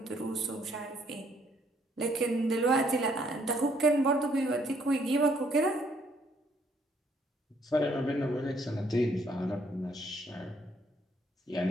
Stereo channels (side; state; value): both; normal; correlation 0.67